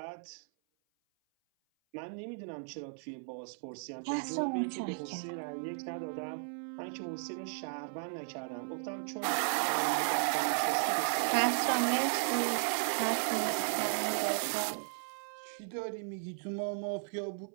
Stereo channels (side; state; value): left; silent; 54 dB below the other